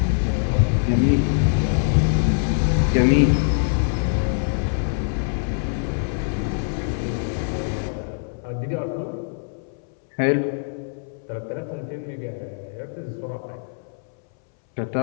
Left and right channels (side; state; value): right; silent; 63 dB below the other